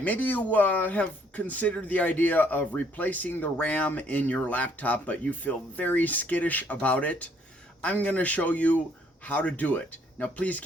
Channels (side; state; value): both; normal; correlation 0.66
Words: you have considered the idea of replacing the RAM in your laptop, but you feel very skittish about it. I'm going to show you how to do it. Now, please